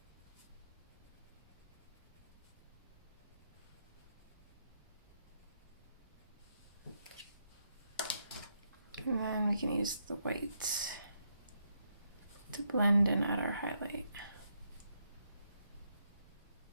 And then we can use the white to blend and add our highlight.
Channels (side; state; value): both; inverted; correlation -0.79